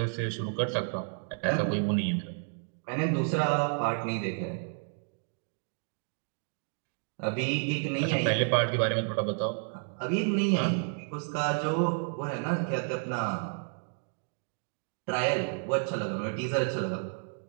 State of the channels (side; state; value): left; silent; 55 dB below the other